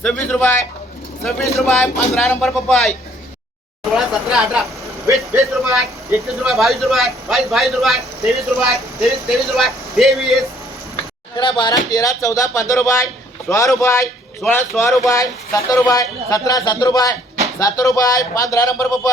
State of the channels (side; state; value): both; normal; correlation 0.61